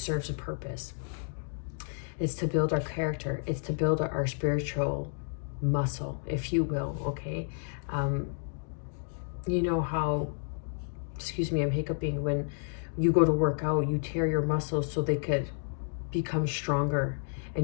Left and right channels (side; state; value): right; silent; 57 dB below the other